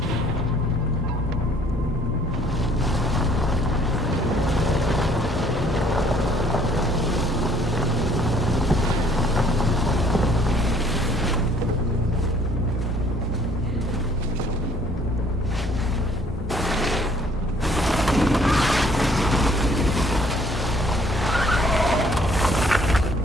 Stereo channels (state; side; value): normal; both; correlation 0.60